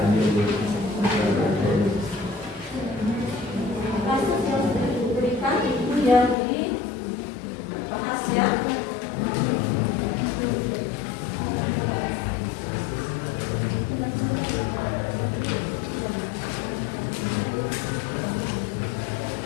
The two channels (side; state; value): right; drops out; at 6.4 s